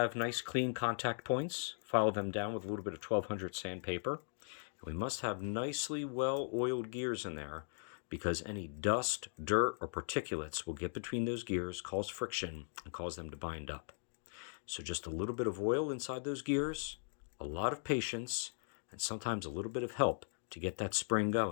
nice clean contact points. File them down with a little bit of 1200 sandpaper. And we must have nicely well-oiled gears in there because any dust, dirt, or particulates will get between those gears, cause friction, and cause them to bind up. So just a little bit of oil inside those gears, a lot of patience, and sometimes a little bit of help to get that spring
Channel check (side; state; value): right; silent; digital silence